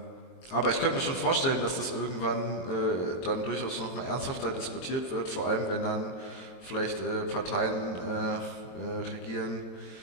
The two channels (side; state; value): right; late; 23 ms